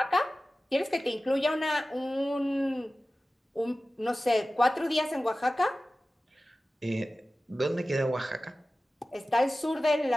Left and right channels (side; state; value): both; normal; correlation 0.96